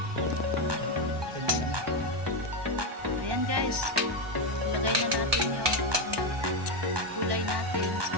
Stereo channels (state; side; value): late; left; 1.2 ms